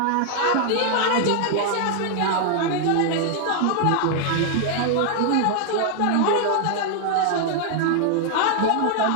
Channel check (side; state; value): both; different; correlation 0.00